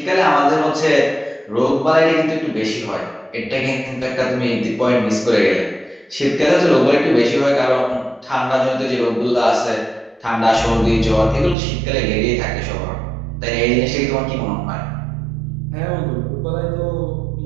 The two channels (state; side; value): drops out; left; at 11.6 s